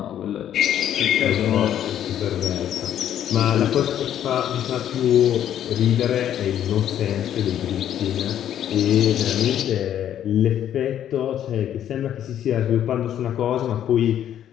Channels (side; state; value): right; quieter; 10.6 dB